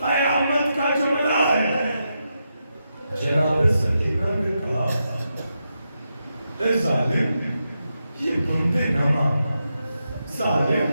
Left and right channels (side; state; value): both; inverted; correlation -0.86